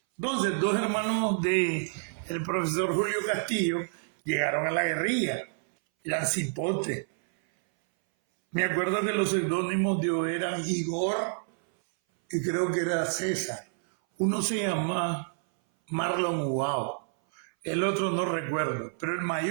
Entonces, 2 hermanos del profesor Julio Castillo llegaron a la guerrilla, eran cipotes. Me acuerdo que los seudónimos de ellos eran Igor y creo que era César. Uno se llama Marlon Ubao, el otro no recuerdo, pero el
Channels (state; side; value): silent; left; 59 dB below the other